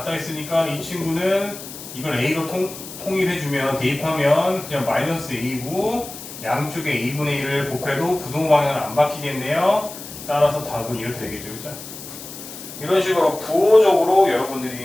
했으니까 이 친구는 이걸 A로 통일해주면 대입하면 그냥 마이너스 A고 양쪽에 A분의 1을 곱해도 부동 방향은 안 바뀌겠네요. 따라서 답은 이렇게 되겠죠. 그죠? 이런 식으로 부호적으로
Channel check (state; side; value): noise; left; hiss, 13 dB below the sound